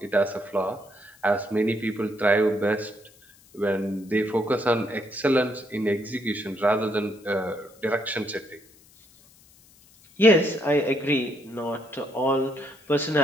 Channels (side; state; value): left; noise; hiss, 27 dB below the sound